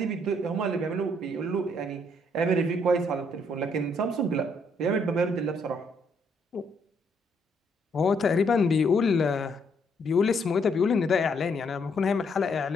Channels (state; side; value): normal; both; correlation 0.71